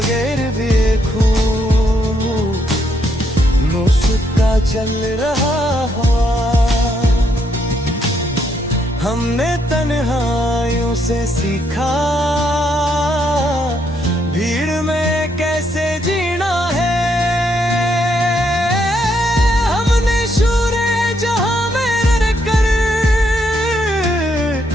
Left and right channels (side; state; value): both; normal; correlation 0.75